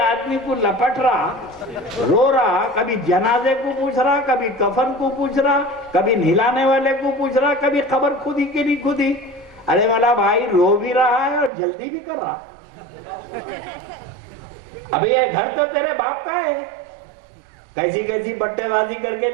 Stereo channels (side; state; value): left; drops out; at 11.5 s